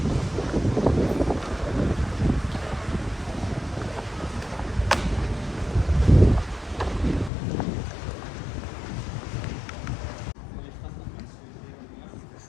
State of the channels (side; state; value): right; drops out; at 7.3 s